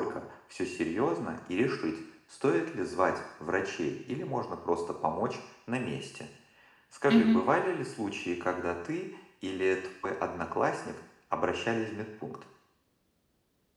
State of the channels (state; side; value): identical; both; correlation 1.00